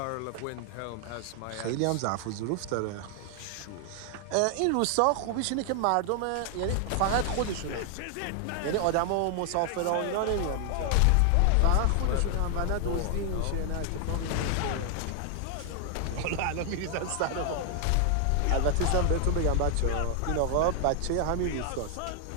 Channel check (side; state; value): both; different; correlation 0.00